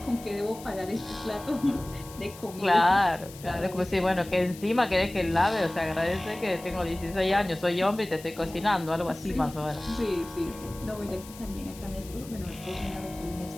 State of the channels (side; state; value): left; noise; hiss, 18 dB below the sound